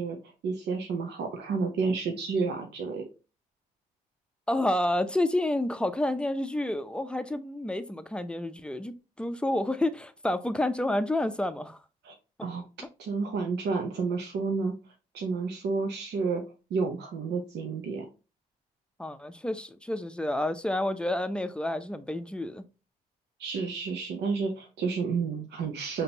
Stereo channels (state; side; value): normal; both; correlation 0.79